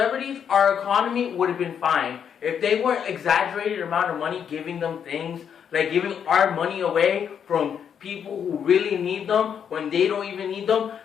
our economy would have been fine. If they weren't exaggerated amount of money giving them things, like giving our money away from people who really need them when they don't even need them,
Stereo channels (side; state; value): right; quieter; 7.9 dB